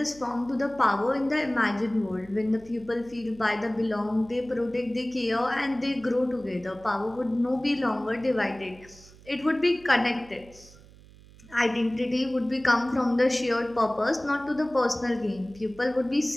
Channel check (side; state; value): right; noise; hum, 23 dB below the sound